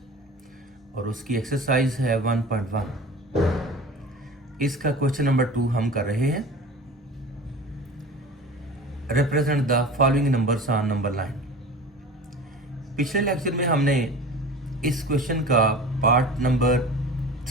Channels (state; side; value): normal; both; correlation 0.38